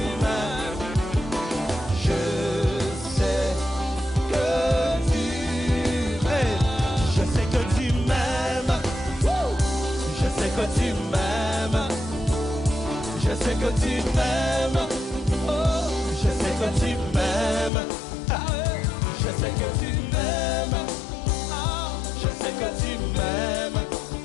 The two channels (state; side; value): drops out; right; at 17.7 s